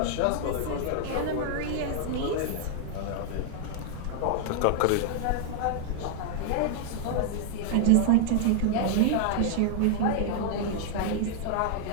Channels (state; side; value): different; both; correlation -0.01